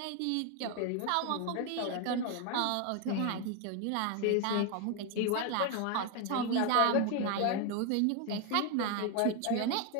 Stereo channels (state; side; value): different; both; correlation 0.01